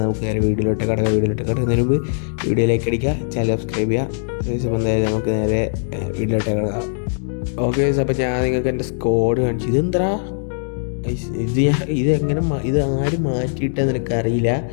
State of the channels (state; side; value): silent; right; digital silence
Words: നമുക്ക് നേരെ വീഡിയോയിലോട്ട് കിടക്കുന്നതിന് മുമ്പ് വീഡിയോ ലൈക്ക് അടിക്കുക, ചാനൽ സബ്സ്ക്രൈബ് ചെയ്യുക. അപ്പോൾ എന്തായാലും നമുക്ക് നേരെ വീഡിയോയിലോട്ട് കിടക്കാം. ഓക്കെ ഗൈസ്, അപ്പോൾ ഞാൻ നിങ്ങൾക്ക് എൻ്റെ സ്കോഡ് കാണിച്ചു. ഇതെന്താ ഇത് ആരും മാറ്റിയിട്ടെന്ന് എനിക്കറിയില്ല.